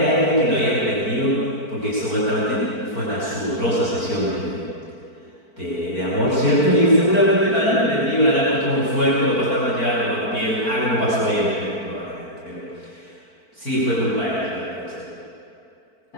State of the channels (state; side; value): late; right; 4.5 ms